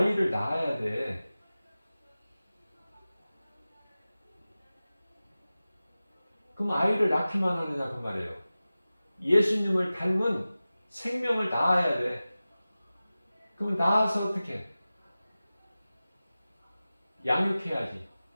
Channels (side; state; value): both; inverted; correlation -0.96